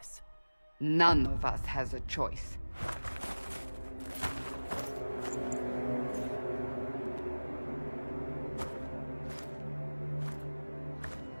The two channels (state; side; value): inverted; both; correlation -1.00